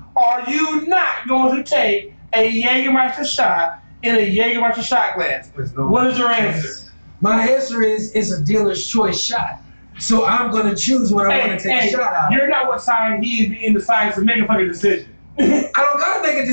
are you not going to take a Jägermeister shot in a Jägermeister shot glass? There's no What is your answer? My answer is it's a dealer's choice shot. So I'm gonna choose what I want to take a shot out. You're not what side he is in the science to make a fucking decision. I don't gotta make a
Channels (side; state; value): both; inverted; correlation -1.00